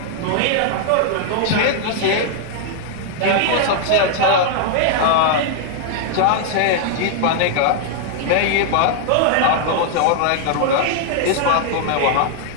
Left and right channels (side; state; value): both; different; correlation -0.01